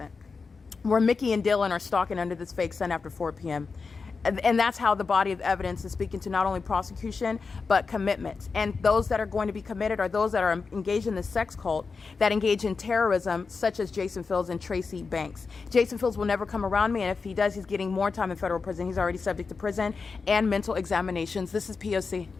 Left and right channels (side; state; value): right; quieter; 4.7 dB